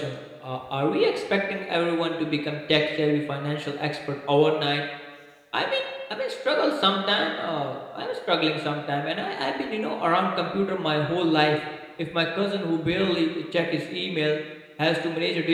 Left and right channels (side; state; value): both; identical; correlation 1.00